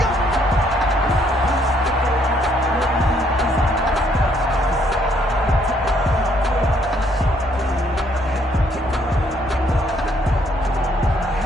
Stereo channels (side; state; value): both; normal; correlation 0.68